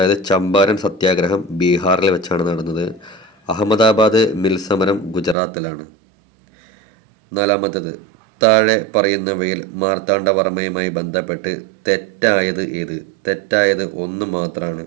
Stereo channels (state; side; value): drops out; left; at 5.4 s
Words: ചമ്പാരൻ സത്യാഗ്രഹം ബീഹാറിൽ വെച്ചാണ് നടന്നത്. അഹമ്മദാബാദ് മിൽ സമരം ഗുജറാത്തിലാണ്. നാലാമത്തേത്: താഴെ പറയുന്നവയിൽ മാർത്താണ്ഡവർമ്മയുമായി ബന്ധപ്പെട്ട് തെറ്റായത് ഏത്? തെറ്റായത് 1 മാത്രമാണ്.